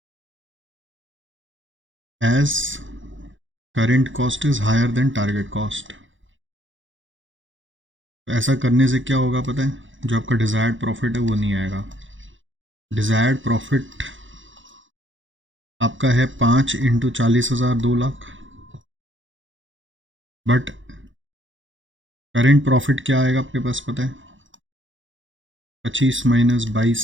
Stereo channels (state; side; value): late; left; 0.56 ms